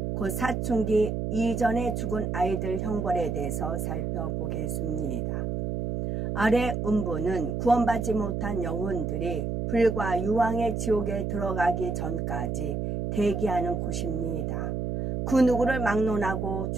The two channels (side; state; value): right; noise; hum, 1 dB below the sound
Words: 곧 사춘기 이전에 죽은 아이들 형벌에 대해서 살펴보겠습니다. 아래 음부는 구원받지 못한 영혼들이 불과 유황의 지옥에 들어가기 전까지 대기하는 곳입니다. 그 누구를 막론하고